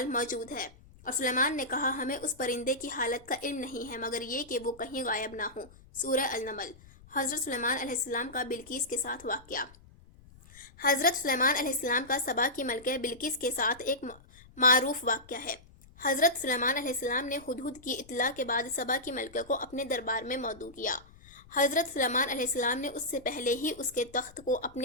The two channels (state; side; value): noise; left; rumble, 23 dB below the sound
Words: موجود ہے۔ اور سلیمان نے کہا، ہمیں اس پرندے کی حالت کا علم نہیں ہے مگر یہ کہ وہ کہیں غائب نہ ہو۔ سورہ النمل۔ حضرت سلیمان علیہ السلام کا بلقیس کے ساتھ واقعہ۔ حضرت سلیمان علیہ السلام کا سبا کی ملکہ بلقیس کے ساتھ ایک معروف واقعہ ہے۔ حضرت سلیمان علیہ السلام نے ہدہد کی اطلاع کے بعد سبا کی ملکہ کو اپنے دربار میں مدعو کیا۔ حضرت سلیمان علیہ السلام نے اس سے پہلے ہی اس کے تخت کو